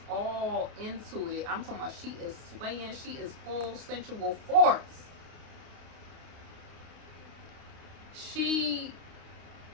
all into it, I'm talking about she is swaying, she is full sensual force. She,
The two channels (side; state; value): left; late; 29 ms